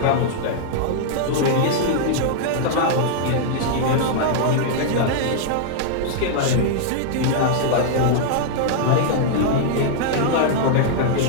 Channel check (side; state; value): both; different; correlation -0.01